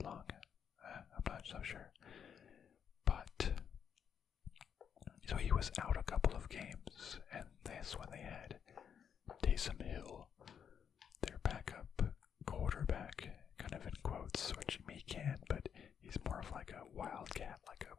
lung. I'm not so sure. But so he was out a couple of games, and that's when they had Taysom Hill, their backup quarterback, kind of in quotes, which he can, but he's more of like a wildcat, like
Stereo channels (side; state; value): right; quieter; 7.8 dB